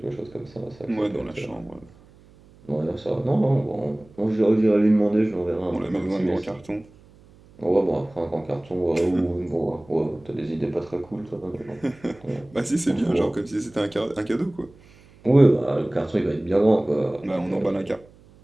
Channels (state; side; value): noise; right; hum, 26 dB below the sound